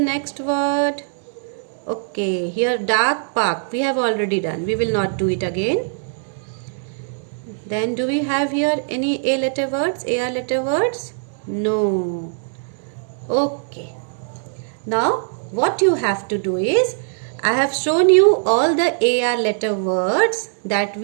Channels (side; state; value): left; silent; digital silence